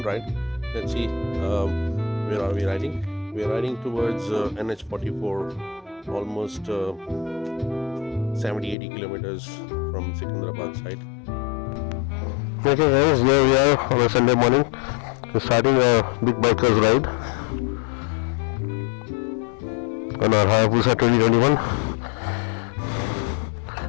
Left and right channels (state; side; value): drops out; right; at 8.8 s